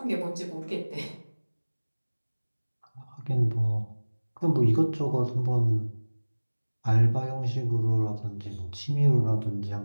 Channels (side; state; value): both; inverted; correlation -1.00